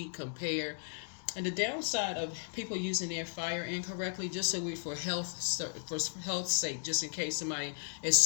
compare. And the downside of people using their fire incorrectly, just so for health's sake, just in case somebody is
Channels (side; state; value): right; silent; digital silence